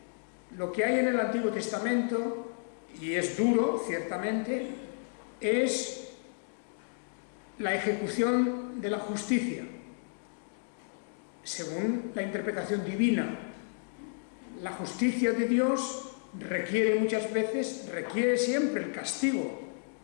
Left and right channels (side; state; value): right; silent; digital silence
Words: Lo que hay en el Antiguo Testamento, y es duro, ciertamente, es la ejecución de la justicia, según la interpretación divina. La justicia de Dios requiere muchas veces, requiere siempre el castigo,